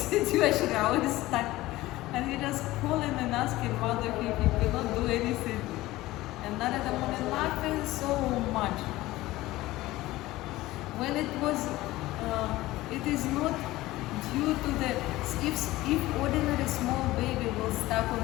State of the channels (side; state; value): right; quieter; 17.7 dB